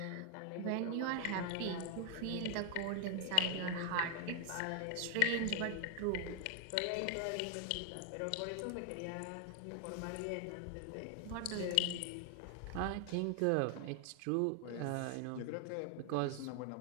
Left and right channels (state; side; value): different; both; correlation 0.00